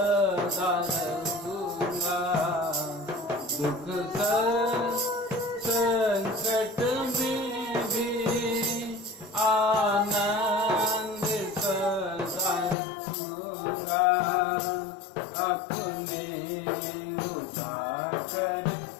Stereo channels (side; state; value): right; drops out; at 12.8 s